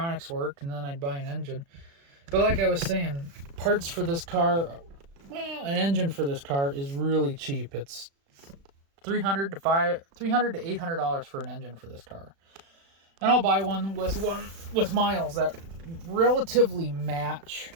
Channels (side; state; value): left; late; 36 ms